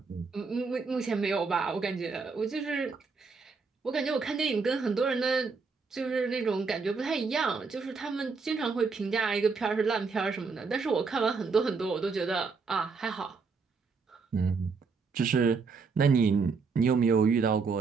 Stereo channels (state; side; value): quieter; left; 4.8 dB